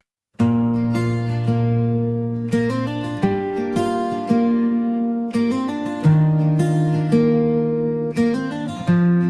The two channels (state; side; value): identical; both; correlation 1.00